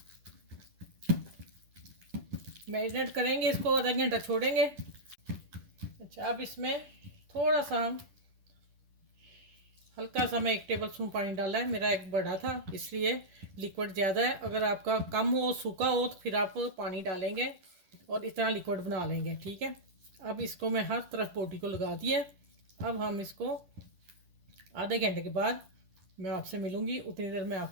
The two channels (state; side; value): late; left; 10 ms